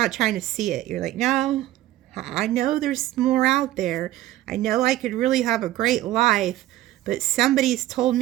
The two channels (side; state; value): left; quieter; 14.9 dB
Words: trying to see it. You're like, no, I know there's more out there. I know I could really have a great life, but somebody's told